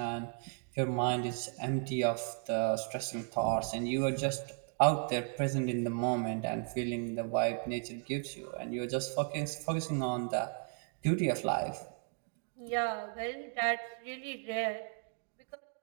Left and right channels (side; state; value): left; silent; 54 dB below the other